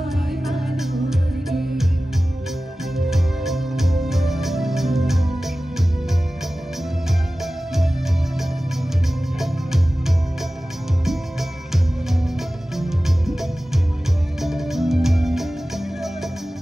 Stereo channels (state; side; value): normal; both; correlation 0.96